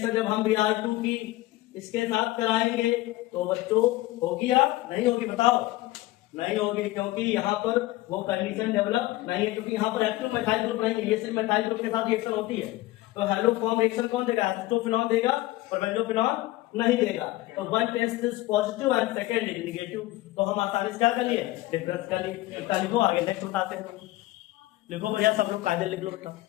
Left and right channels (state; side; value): quieter; right; 17.9 dB